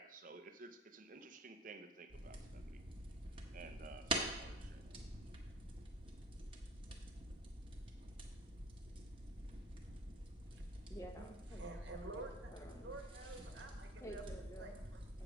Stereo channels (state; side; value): normal; both; correlation 0.45